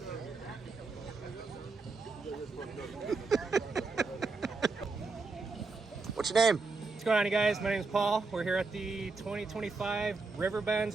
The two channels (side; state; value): left; quieter; 4.0 dB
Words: What's your name? What's going on, you guys? My name is Paul. We're here at the 2025 Riverbends